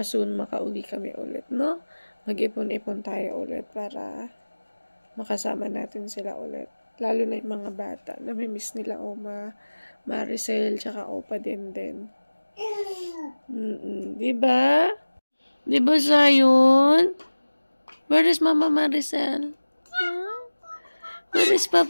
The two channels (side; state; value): both; inverted; correlation -1.00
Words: soon makauwi kami ulit, no? Mag-ipon-ipon tayo ulit para makasama natin sila ulit. Lalo na yung mga bata. Namimiss nila Oma, Maricel, tsaka Opa din. Diba? Diba, Zion? Where is Mama Maricel? Where is